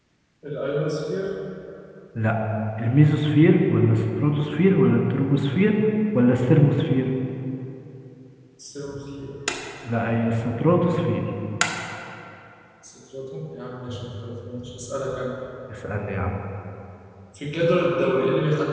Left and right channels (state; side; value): identical; both; correlation 1.00